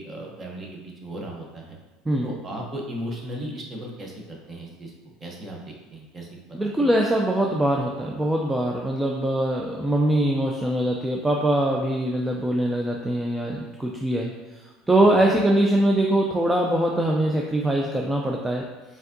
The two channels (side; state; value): both; normal; correlation 0.79